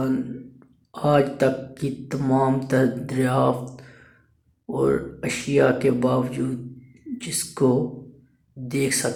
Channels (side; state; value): both; identical; correlation 1.00